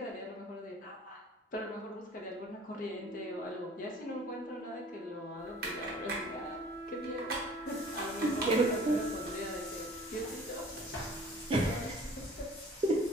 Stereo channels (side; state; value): both; normal; correlation 0.50